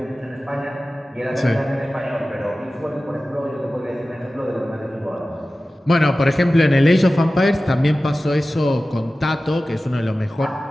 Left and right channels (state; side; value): normal; both; correlation 0.96